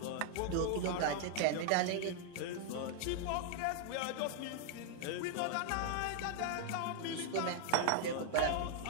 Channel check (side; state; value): both; different; correlation 0.00